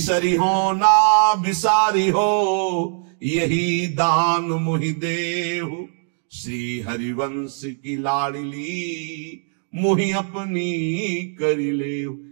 हो ना बिसारी हो, यही दान मुहि देहु, श्री हरिवंश की लाडली मुहि अपनी करी ले।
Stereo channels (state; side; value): silent; left; digital silence